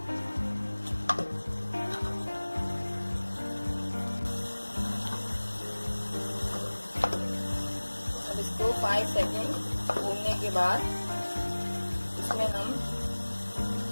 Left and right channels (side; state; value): both; inverted; correlation -1.00